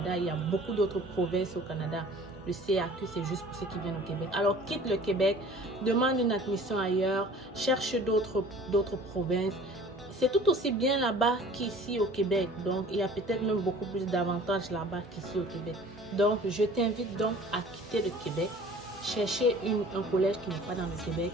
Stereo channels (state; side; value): normal; both; correlation 0.47